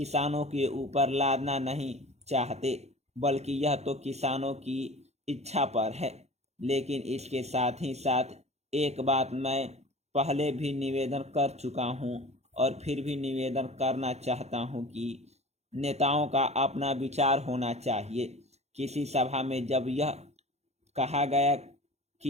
के ऊपर लादना नहीं चाहते, बल्कि यह तो किसानों की इच्छा पर है। लेकिन इसके साथ ही साथ एक बात मैं पहले भी निवेदन कर चुका हूं और फिर भी निवेदन करना चाहता हूं कि नेताओं का अपना विचार होना चाहिए। किसी सभा में जब यह कहा गया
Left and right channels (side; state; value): left; late; 0.31 ms